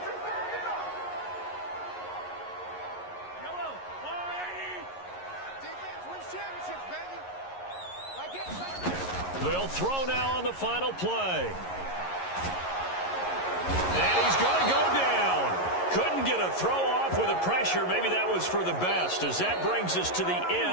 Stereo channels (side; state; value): right; late; 11 ms